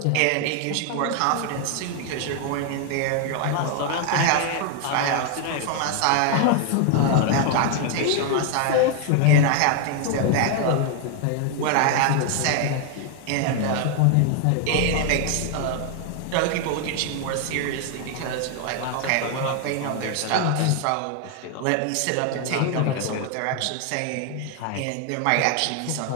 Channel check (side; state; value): both; different; correlation 0.01